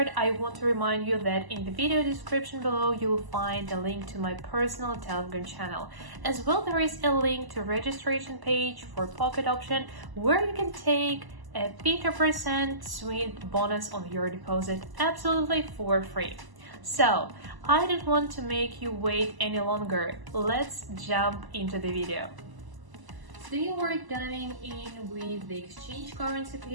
I want to remind you that in the video description below, you'll find a link to my personal Telegram channel. As well, there is a link to registration page for pocket option where you can take a 50% sweet bonus on your deposit absolutely for free. So, I don't want to make you wait any longer. Let's jump into the video. Today we're diving in with the exchange currency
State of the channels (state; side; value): late; left; 1.0 ms